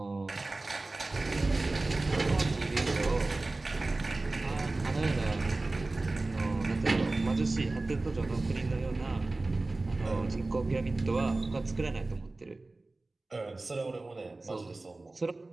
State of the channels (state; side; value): quieter; left; 3.1 dB